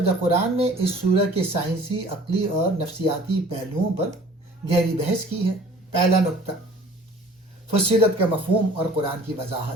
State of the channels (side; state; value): both; normal; correlation 0.49